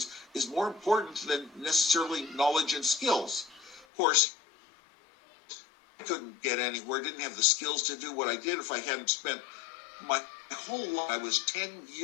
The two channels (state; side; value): drops out; right; at 3.9 s